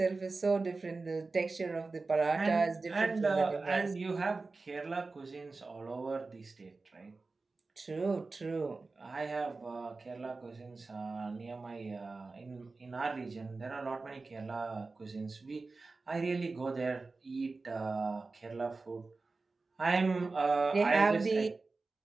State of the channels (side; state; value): left; quieter; 3.8 dB